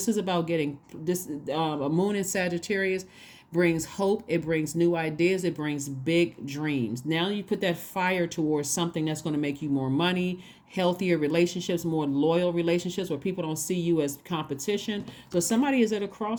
is about getting this. A moon in Sagittarius brings hope. It brings new ideas. It brings big dreams. Now you put that fire towards something that's going to make you more money, healthier relationships, more loyal relationships where people don't see you as competition. So somebody is at a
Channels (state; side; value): identical; both; correlation 1.00